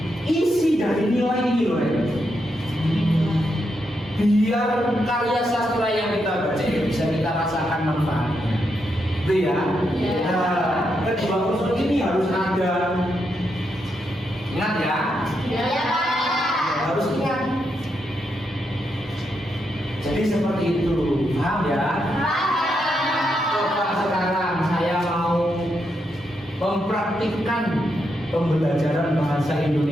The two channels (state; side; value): normal; both; correlation 0.82